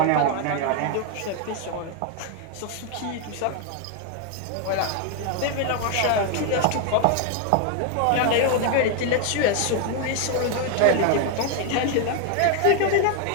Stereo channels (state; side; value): different; both; correlation 0.00